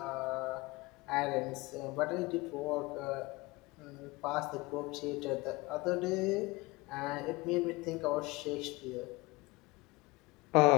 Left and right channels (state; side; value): quieter; right; 23.1 dB